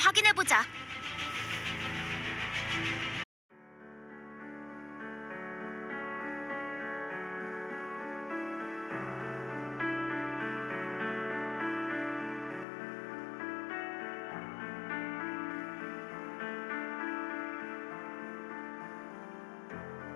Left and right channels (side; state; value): right; drops out; at 12.7 s